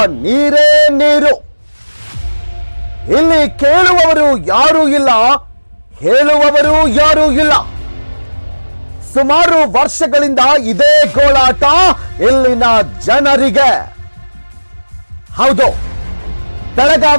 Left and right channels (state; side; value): inverted; both; correlation -1.00